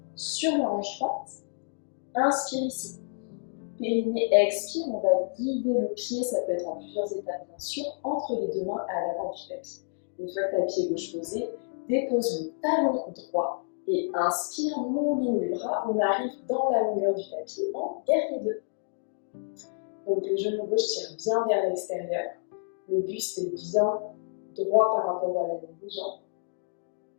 sur la hanche droite. Inspire ici. Périnée, expire, on va guider le pied, ça peut être en plusieurs étapes bien sûr, entre les deux mains à l'avant du tapis. Une fois que tu as le pied gauche posé, dépose le talon droit et inspire, mouline les bras, on arrive dans la longueur du tapis en guerrier 2. Donc le genou gauche tire bien vers l'extérieur, le buste est bien droit par rapport à la ligne des jambes.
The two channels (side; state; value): right; silent; digital silence